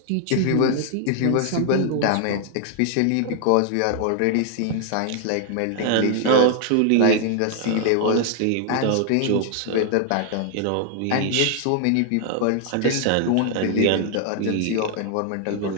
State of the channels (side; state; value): both; different; correlation 0.00